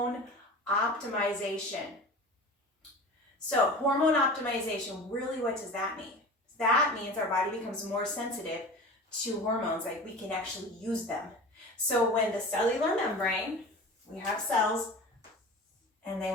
optimization. So hormone optimization, really what does that mean? That means our body becomes more sensitive to hormones, like we can actually use them. So when the cellular membrane, we have cells and they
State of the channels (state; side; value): normal; both; correlation 0.35